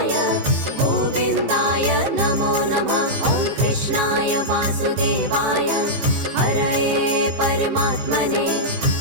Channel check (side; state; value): left; late; 15 ms